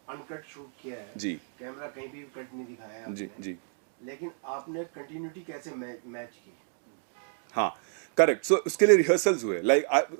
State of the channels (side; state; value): left; silent; 58 dB below the other